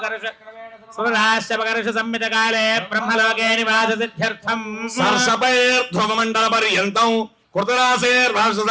सर्वराश्यपकर्षसंमितकाले ब्रह्मलोके निवाससिद्ध्यर्थम् सर्षपैर्ध्रुवमण्डलपर्यन्तं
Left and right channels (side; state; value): both; identical; correlation 1.00